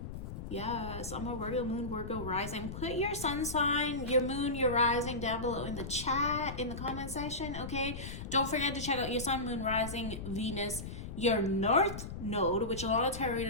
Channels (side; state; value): left; noise; rumble, 8 dB below the sound